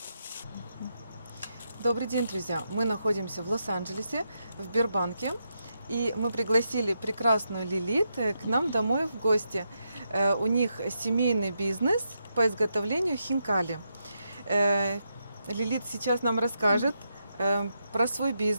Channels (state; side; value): inverted; both; correlation -0.83